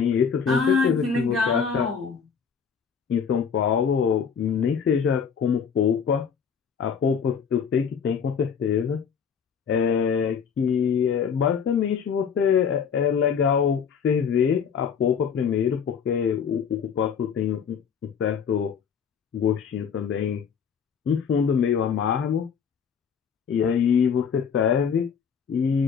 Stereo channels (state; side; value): quieter; right; 6.8 dB